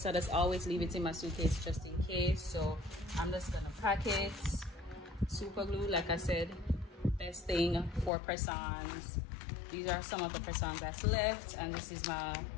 I just always leave it in my suitcase just in case. So I'm just gonna pack it. Super glue, like I said, best thing for press-ons. These are some of the press-ons that's left, and this is my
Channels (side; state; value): right; drops out; at 8.1 s